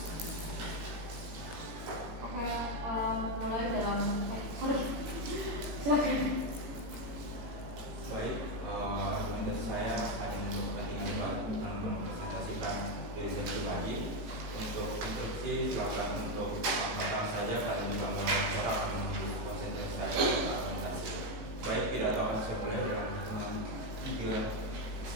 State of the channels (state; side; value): late; left; 18 ms